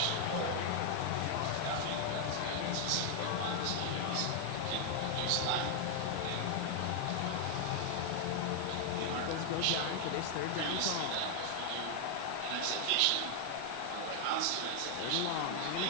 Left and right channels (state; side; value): different; both; correlation 0.00